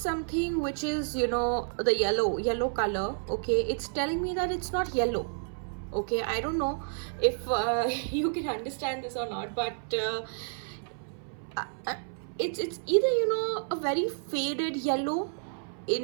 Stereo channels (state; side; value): silent; left; 58 dB below the other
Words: which is, you know, the yellow color. Okay, it's telling me that it's not yellow. Okay, I don't know if you can understand this or not, but it's either, you know, a very faded yellow,